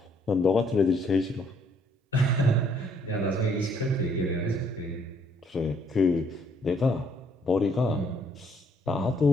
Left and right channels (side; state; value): both; normal; correlation 0.67